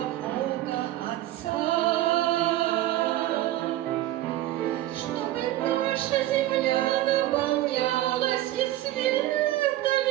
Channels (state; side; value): quieter; left; 14.8 dB